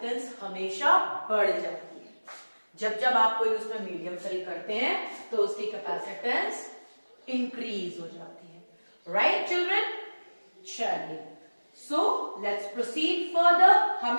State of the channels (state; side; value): inverted; both; correlation -1.00